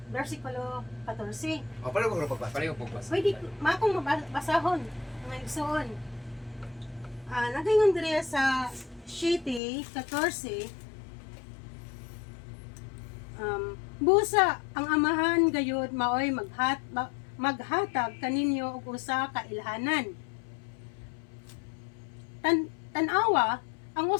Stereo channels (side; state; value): right; drops out; at 9.6 s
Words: versikulo 14. O paano ko pagbasa? Pareho po ba? Pwede makong mabasahon nga igsoon. Nagayon diri sa 7:14, busa ang amahan gayud maoy maghatag kaninyo og usa ka ilhanan. Tanawa ang